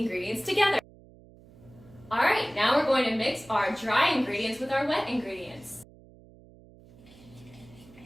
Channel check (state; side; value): noise; right; hum, 23 dB below the sound